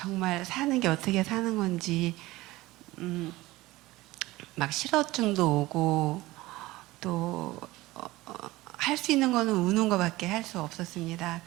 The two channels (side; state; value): left; quieter; 18.9 dB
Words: 사는 게 어떻게 사는 건지 막 실어증도 오고 또 할 수 있는 거는 우는 거밖에 할 수 없었습니다.